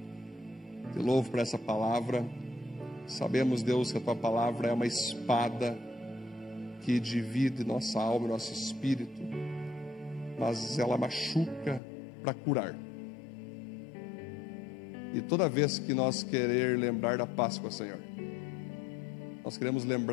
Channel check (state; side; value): drops out; right; at 11.8 s